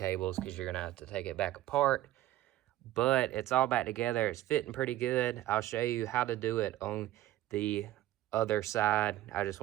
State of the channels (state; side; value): quieter; left; 14.5 dB